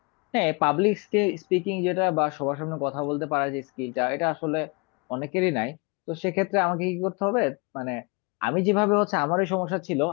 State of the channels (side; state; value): right; quieter; 30.4 dB